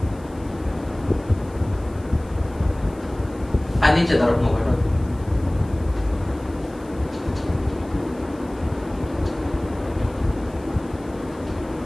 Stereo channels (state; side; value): noise; left; hiss, 27 dB below the sound